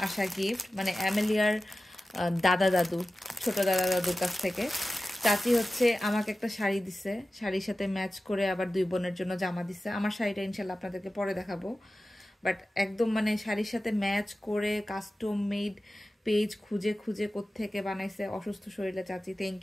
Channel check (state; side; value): normal; both; correlation 0.95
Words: আসা গিফট, মানে অ্যামেলিয়ার দাদা দাদু, ছোট দাদা দাদুর কাছ থেকে। চাচি হচ্ছে আমাকে একটা শাড়ি দিছে, শাড়ির সাথে ম্যাচ করে আবার দুই বোনের জন্য জামা দিছে। আমার শাড়িটা ইনশাল্লাহ আপনাদেরকে পরে দেখাবো, বাট একদম মানে শাড়ির সাথে ম্যাচ করে কাস্টম মেড পেজ খুঁজে খুঁজে কোত্থেকে বানাইছে অসুস্থ শরীরে চাচি, thank